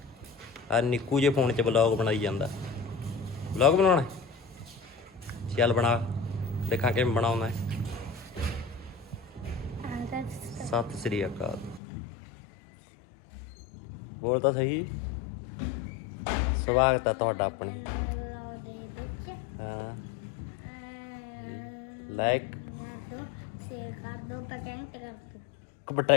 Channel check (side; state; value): right; drops out; at 11.8 s